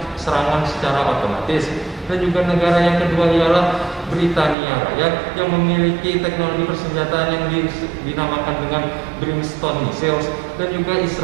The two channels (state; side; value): drops out; left; at 4.5 s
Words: serangan secara otomatis. Dan juga negara yang kedua ialah Britania Raya yang memiliki teknologi persenjataan yang dinamakan dengan Brimstone missiles, dan juga